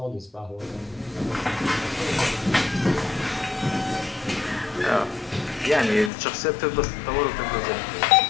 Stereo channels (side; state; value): right; drops out; at 6.1 s